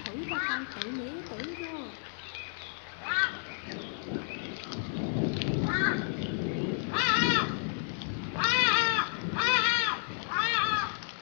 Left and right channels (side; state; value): right; silent; digital silence